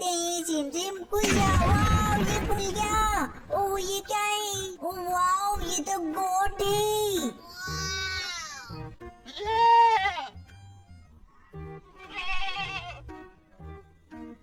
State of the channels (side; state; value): both; identical; correlation 1.00